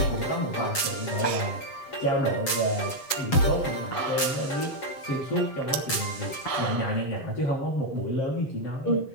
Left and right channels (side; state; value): right; late; 7.3 ms